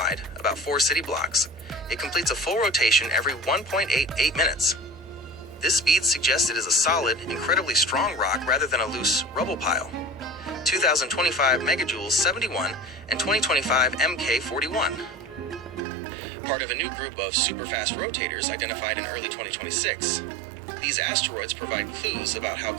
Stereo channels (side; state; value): left; drops out; at 15.8 s